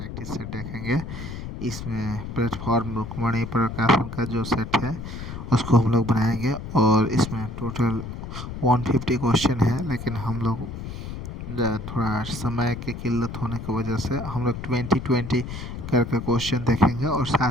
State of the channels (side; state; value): left; noise; rumble, 8 dB below the sound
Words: सेट देखेंगे। इसमें प्लेटफॉर्म रुक्मणी प्रकाशन का जो सेट है उसको हम लोग बनाएंगे और इसमें टोटल 150 क्वेश्चन है, लेकिन हम लोग थोड़ा समय की किल्लत होने की वजह से हम लोग 20-20 करके क्वेश्चन देखेंगे और